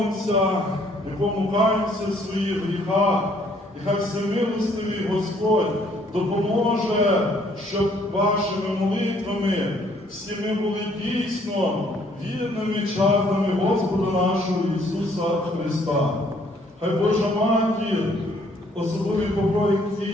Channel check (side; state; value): both; normal; correlation 0.64